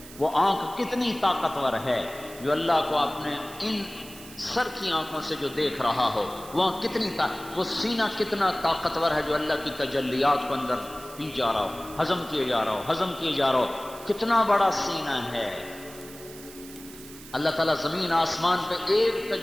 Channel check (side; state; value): right; noise; hiss, 17 dB below the sound